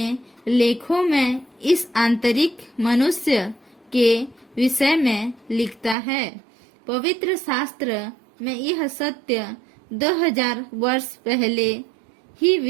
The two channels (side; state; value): left; drops out; at 6.0 s